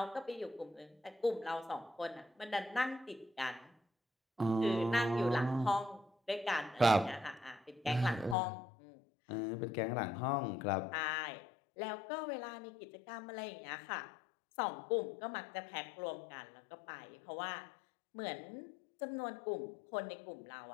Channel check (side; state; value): right; drops out; at 8.3 s